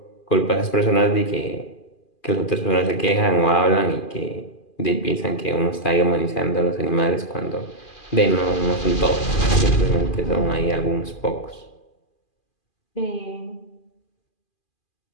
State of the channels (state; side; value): late; right; 2.4 ms